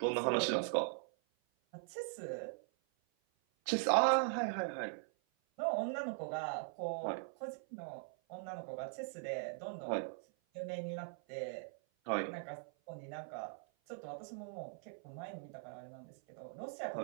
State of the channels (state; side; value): silent; left; 51 dB below the other